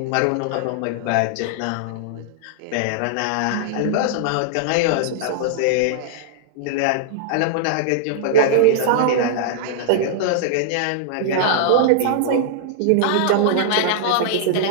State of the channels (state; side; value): different; both; correlation -0.01